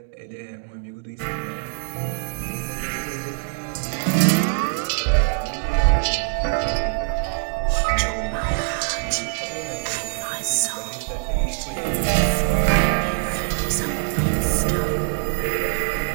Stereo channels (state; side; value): silent; left; digital silence